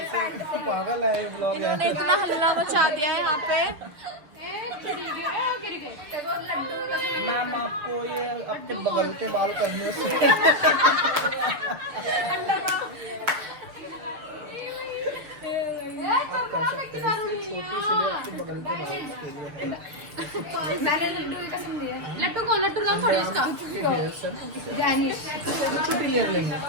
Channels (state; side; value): late; left; 6.7 ms